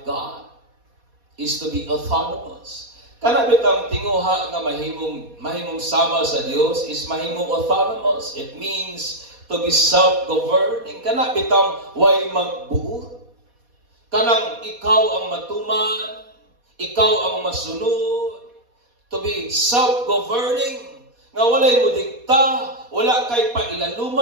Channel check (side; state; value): left; late; 4.2 ms